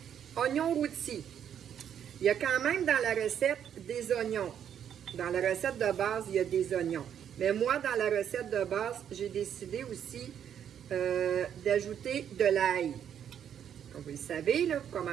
oignons rôtis. Il y a quand même dans la recette des oignons. Dans la recette de base, il y a des oignons. Mais moi, dans la recette de base, j'ai décidé aussi d'ajouter de l'ail. Comme vous le savez, là, vous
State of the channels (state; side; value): quieter; left; 9.1 dB